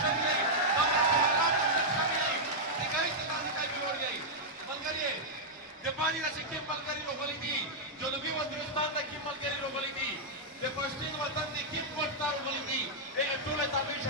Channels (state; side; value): normal; both; correlation -0.06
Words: شوي یئ دومره په حالات کې شوي یئ چې کوي چې تاسو کوي جوړ یئ ملګری د باندې چې کوم ملګری راغلي دي جنوبي وزیرستان د کوم ملګری راغلي دي د پښتون وطن د کوم پټار راغلي دي ټول تابع